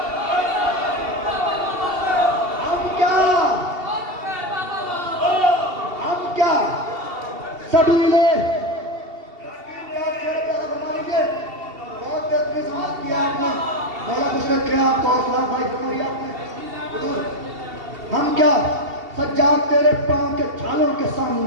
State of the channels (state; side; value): late; left; 2.7 ms